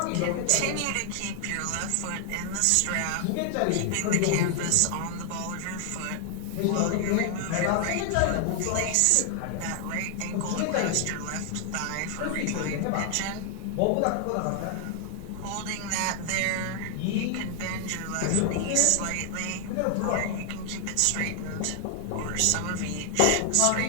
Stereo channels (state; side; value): different; both; correlation 0.00